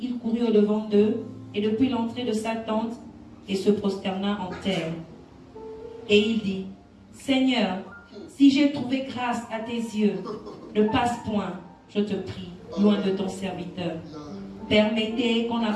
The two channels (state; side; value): identical; both; correlation 1.00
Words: il courut au-devant d'eux, et depuis l'entrée de sa tente, et se prosterna en terre. Et il dit, Seigneur, si j'ai trouvé grâce à tes yeux, ne passe point, je te prie, loin de ton serviteur. Permettez qu'on